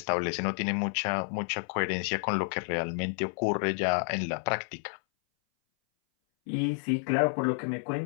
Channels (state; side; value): silent; right; 58 dB below the other